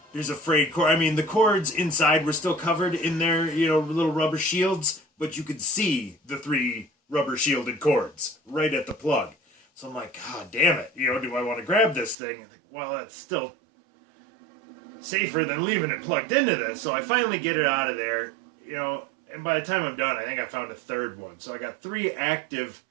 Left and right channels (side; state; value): left; drops out; at 12.2 s